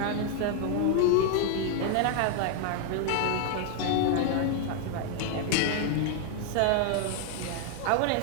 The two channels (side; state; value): both; different; correlation 0.00